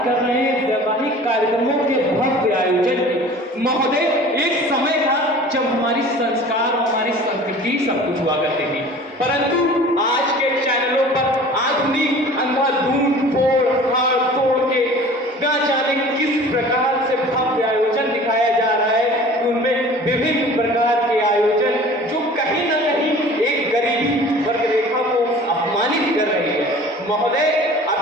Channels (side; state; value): both; normal; correlation 0.44